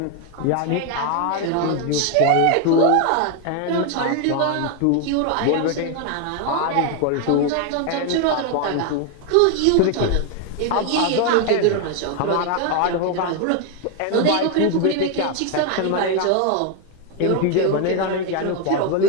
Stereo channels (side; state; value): both; different; correlation 0.01